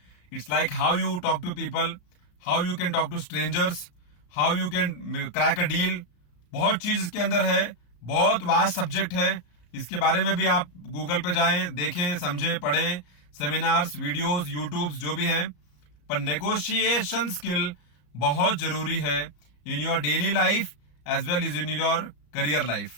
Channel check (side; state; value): right; late; 34 ms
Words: It's like how you talk to people, how you can talk to strangers, how you can crack a deal. बहुत चीज इसके अंदर है, बहुत vast subject है. इसके बारे में भी आप गूगल पे जाएं, देखें, समझें, पढ़ें, सेमिनार्स, वीडियोस, यूट्यूब्स जो भी हैं. पर नेगोशिएशन स्किल बहुत जरूरी है in your daily life as well is in your career life.